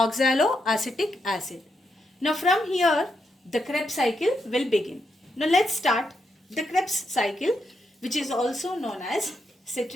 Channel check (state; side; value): normal; both; correlation 0.82